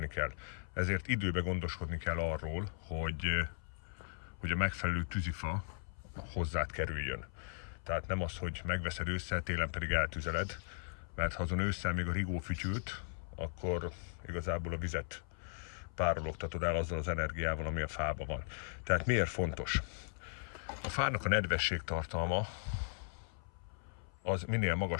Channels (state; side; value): silent; right; 53 dB below the other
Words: kell. Ezért időben gondoskodni kell arról, hogy a megfelelő tűzifa hozzád kerüljön. Tehát nem az, hogy megveszed ősszel, télen pedig eltüzeled, mert ha azon ősszel még a rigó fütyült, akkor igazából a vizet párologtatod el azzal az energiával, ami a fában van. Tehát miért fontos? A fának a nedvesség tartalma az minél